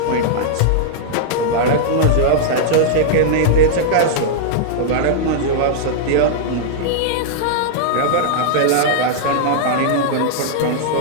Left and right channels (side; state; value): both; different; correlation -0.02